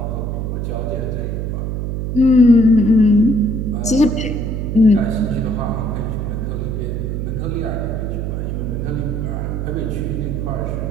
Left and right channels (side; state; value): right; noise; hum, 2 dB below the sound